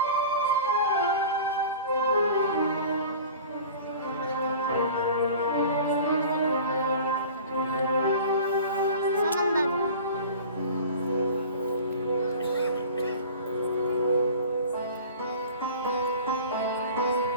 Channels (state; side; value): inverted; both; correlation -0.40